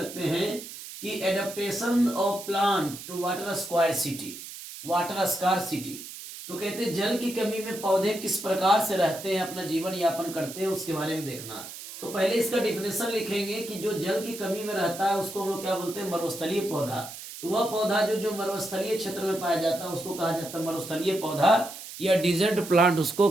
हैं कि adaptation of plant to water scarcity. तो कहते हैं जल की कमी में पौधे किस प्रकार से रहते हैं, अपना जीवन यापन करते हैं, उसके बारे में देखना। तो पहले इसका डिफिनेशन लिखेंगे कि जो जल की कमी में रहता है उसको हम लोग क्या बोलते हैं, मरुस्थलीय पौधा। तो वह पौधा जो मरुस्थलीय क्षेत्र में पाया जाता है उसको कहा जाता है मरुस्थलीय पौधा, या डिजर्ट प्लांट उसको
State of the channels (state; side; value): noise; right; hiss, 12 dB below the sound